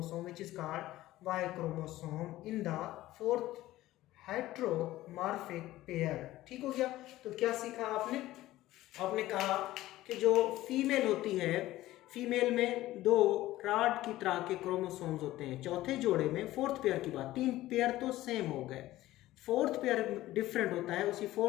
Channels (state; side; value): quieter; right; 16.0 dB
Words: which is called Y chromosome in the fourth heteromorphic pair। ठीक हो गया? तो क्या सीखा आपने? आपने कहा कि जो फीमेल होती है, फीमेल में दो रॉड की तरह के क्रोमोसोम्स होते हैं। चौथे जोड़े में फोर्थ पेयर की बात, तीन पेयर तो सेम हो गए, फोर्थ पेयर डिफरेंट होता है। उसी